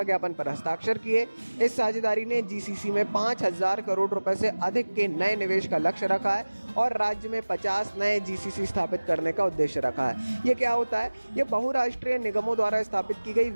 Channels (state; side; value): inverted; both; correlation -1.00